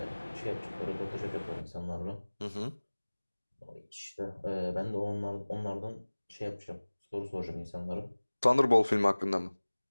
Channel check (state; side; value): inverted; both; correlation -1.00